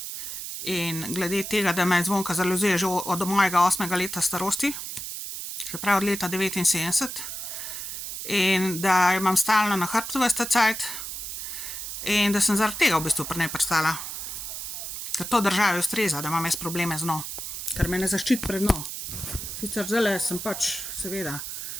in glede tega, da me Zvonka zaluzuje že od mojega 8. leta starosti, se pravi od leta 79, in da jo imam stalno na hrbtu ves ta cajt in da sem zaradi tega v bistvu pri njej pristala. Ker to državi ustreza, da imam jaz probleme z njo, ker me ne zaščiti pred njo. Sicer zdajle sem pač, seveda,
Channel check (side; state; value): right; noise; hiss, 7 dB below the sound